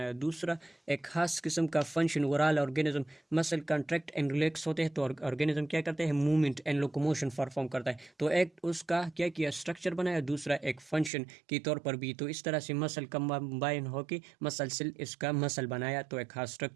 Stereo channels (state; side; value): drops out; left; at 11.1 s